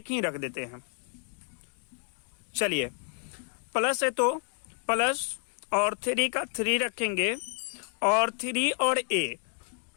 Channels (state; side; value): silent; right; 58 dB below the other